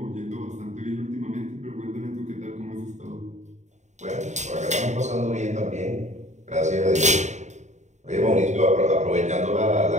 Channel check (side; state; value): left; late; 0.34 ms